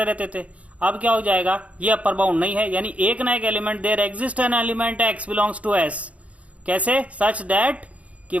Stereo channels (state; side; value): late; left; 0.066 ms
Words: रहते थे। अब क्या हो जाएगा, ये अपर बाउंड नहीं है, यानी एक ना एक element, there exist an element x belongs to S, कैसे, सच दैट कि